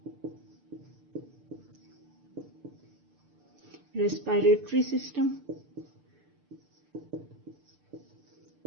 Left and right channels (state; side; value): late; left; 6.7 ms